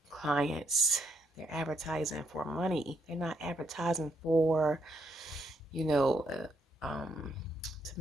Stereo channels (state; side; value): normal; both; correlation 0.72